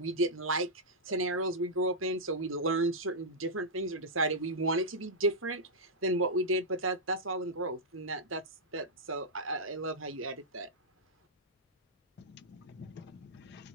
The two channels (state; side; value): normal; both; correlation -0.09